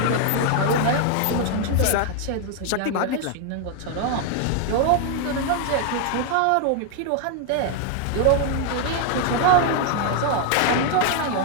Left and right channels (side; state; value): both; different; correlation 0.00